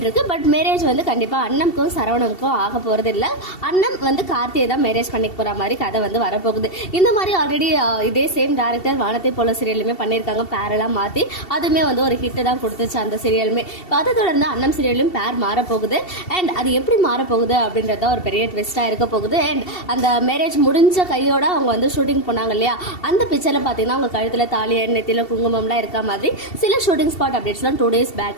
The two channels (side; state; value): right; late; 2.7 ms